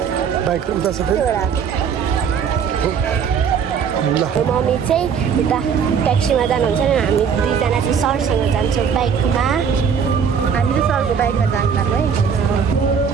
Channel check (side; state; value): left; quieter; 6.9 dB